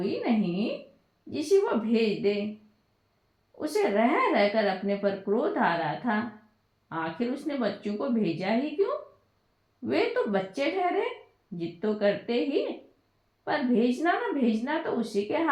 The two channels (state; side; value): identical; both; correlation 1.00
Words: नहीं जिसे वो भेज दे। उसे रह रहकर अपने पर क्रोध आ रहा था। आखिर उसने बच्चों को भेजा ही क्यों? वे तो बच्चे ठहरे, जिद तो करते ही, पर भेजना न भेजना तो उसी के